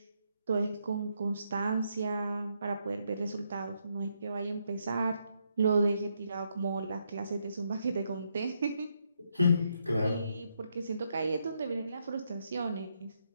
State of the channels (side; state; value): both; inverted; correlation -0.78